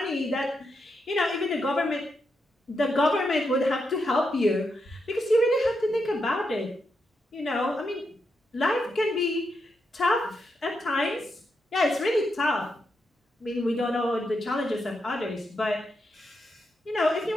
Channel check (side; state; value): both; normal; correlation 0.83